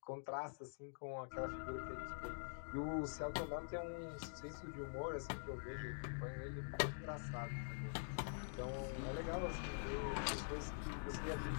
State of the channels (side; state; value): right; silent; digital silence